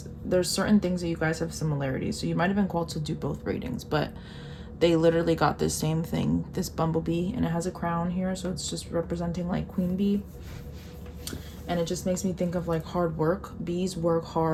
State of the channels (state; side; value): identical; both; correlation 1.00